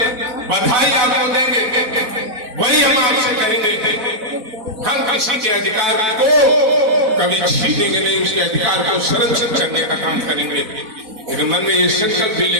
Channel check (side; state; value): left; late; 4.1 ms